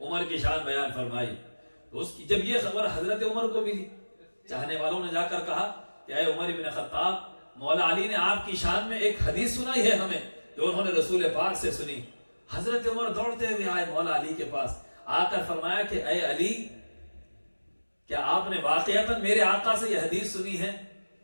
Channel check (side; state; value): both; inverted; correlation -1.00